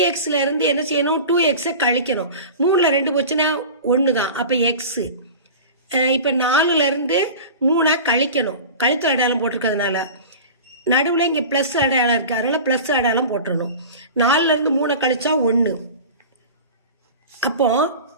இருந்து என்ன செய்யணும்? 2x கழிக்கணும். 3ல 2 போச்சுன்னா 1 தான். அப்போ x. இப்போ 4ல இருந்து 3 கழிக்கணும், கழித்தல் அடையாளம் போட்டிருக்கிறதுனால. நடுவில் இங்கே ப்ளஸ் அடையாளம் இருக்கு, அதனால ப்ளஸ் அடையாளம் போட்டுடணும். 4ல இருந்து 3 கழிச்சா 1. அப்போ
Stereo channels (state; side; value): inverted; both; correlation -0.35